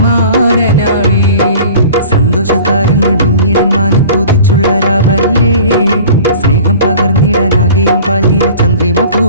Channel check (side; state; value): both; inverted; correlation -0.44